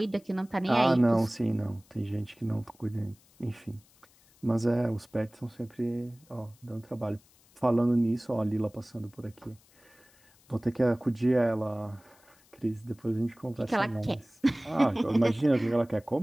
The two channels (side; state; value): left; noise; hiss, 30 dB below the sound